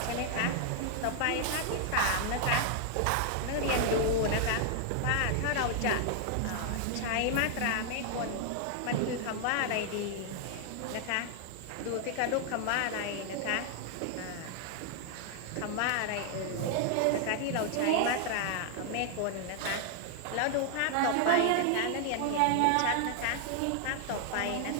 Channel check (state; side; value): different; both; correlation 0.00